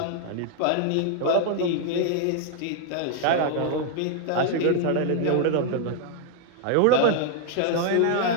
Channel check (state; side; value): different; both; correlation 0.00